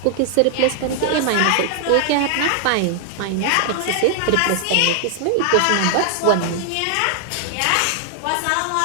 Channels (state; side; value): different; both; correlation 0.00